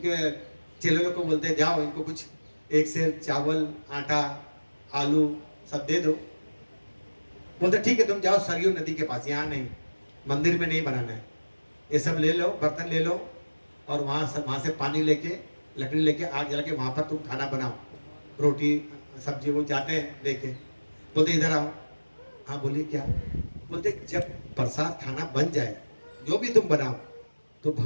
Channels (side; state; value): both; inverted; correlation -1.00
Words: चेले लोग को बोलते हैं जाओ इनको कुछ एक सेर चावल, आटा, आलू सब दे दो। बोलते ठीक है तुम जाओ सरयू नदी के पास, यहाँ नहीं, मंदिर में नहीं बनाना है, ये सब ले लो, बर्तन ले लो और वहाँ से पानी लेके, लकड़ी लेके, आग जला के वहाँ पर तुम खाना बनाओ, रोटी सब्जी। वो जाते हैं लेके, बोलते इधर आओ। हाँ बोलिए क्या? बोलते जब प्रसाद खाना बन जाए, जो भी तुम बनाओ, तो